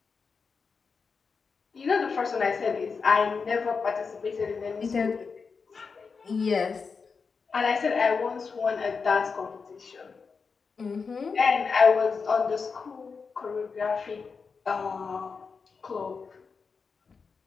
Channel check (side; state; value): right; quieter; 5.1 dB